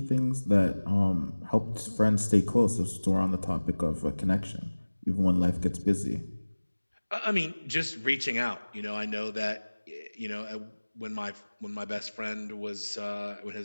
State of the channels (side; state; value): both; inverted; correlation -1.00